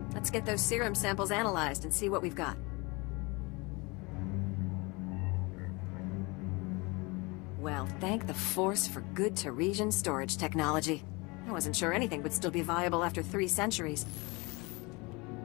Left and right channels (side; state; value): right; quieter; 26.6 dB